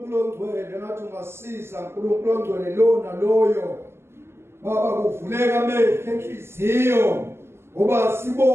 ongcwele ngathi ungasiza uNkulunkulu ongcwele lona loyo. Baba kuvuleka amehlo enhliziyo ngoba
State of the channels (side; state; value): left; late; 0.12 ms